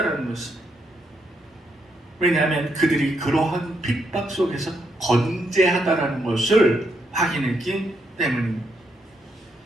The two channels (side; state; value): both; normal; correlation 0.78